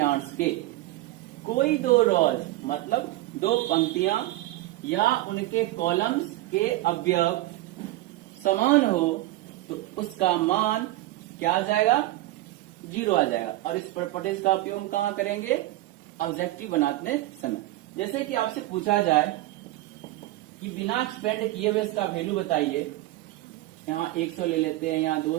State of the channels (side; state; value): left; quieter; 17.0 dB